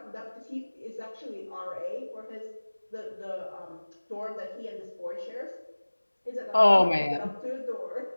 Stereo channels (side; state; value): both; inverted; correlation -1.00